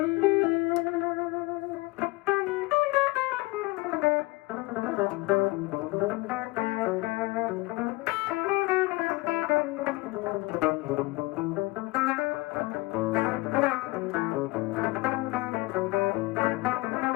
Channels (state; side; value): quieter; right; 22.1 dB